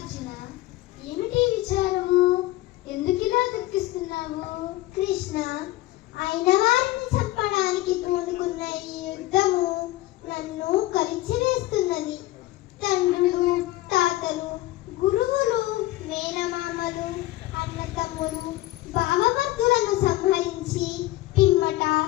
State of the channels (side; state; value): right; quieter; 17.3 dB